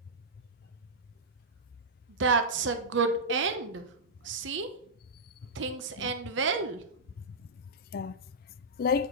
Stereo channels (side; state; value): both; normal; correlation -0.11